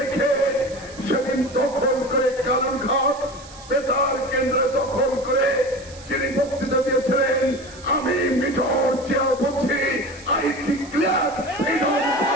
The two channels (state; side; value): noise; right; hiss, 19 dB below the sound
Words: সেদিন দখল করে কালুরঘাট বেতার কেন্দ্রে দখল করে যিনি বক্তৃতা দিয়েছিলেন, আমি মেজর জিয়া বলছি, আই ডিক্লেয়ার ফ্রিডম।